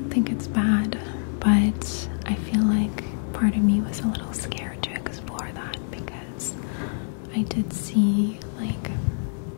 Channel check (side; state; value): right; silent; digital silence